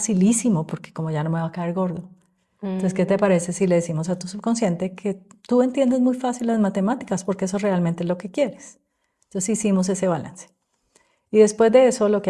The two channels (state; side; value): identical; both; correlation 1.00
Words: porque como ya no me va a caer gordo. Entonces, ¿qué te Mm. parece si le decimos a tu subconsciente que tú entiendes muy fácil las matemáticas porque eso realmente es lo que quieres? Entonces hicimos ese balance. Y después de eso lo